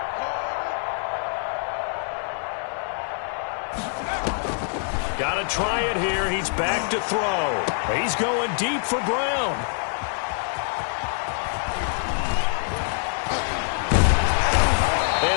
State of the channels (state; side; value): silent; right; 58 dB below the other